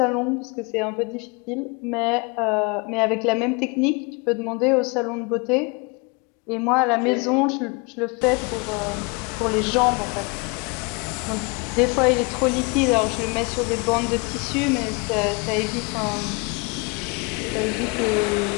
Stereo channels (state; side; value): quieter; right; 30.4 dB